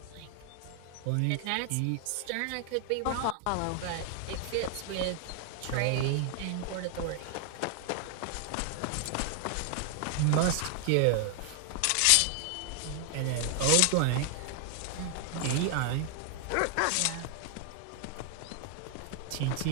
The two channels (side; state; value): both; different; correlation 0.00